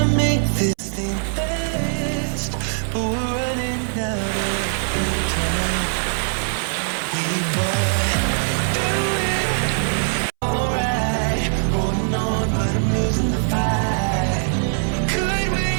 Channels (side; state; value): left; silent; 65 dB below the other